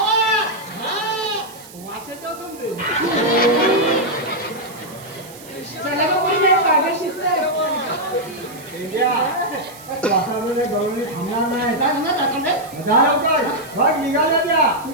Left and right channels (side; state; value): right; noise; hiss, 19 dB below the sound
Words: वाशाचं समजेल. चला का कोणी नाही पागल शिकतंय. पेंड्या. वातावरणाच्या गवळणी थांबणार नाही. काय म्हणणार दाखवलंय? जा लवकर. बघ निघाल्या त्या.